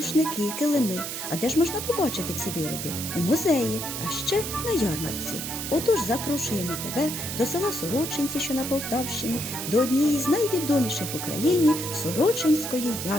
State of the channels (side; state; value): right; noise; hiss, 5 dB below the sound